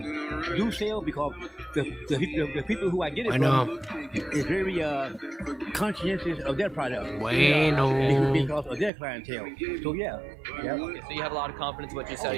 do sell because the people who I get it from is very conscientious of their product. Bueno. Because of their clientele. So yeah. Okay, so you have a lot of confidence in what you sell.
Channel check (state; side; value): drops out; left; at 8.9 s